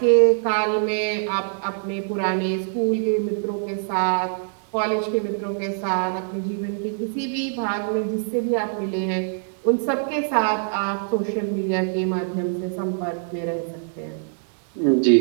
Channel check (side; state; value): left; silent; digital silence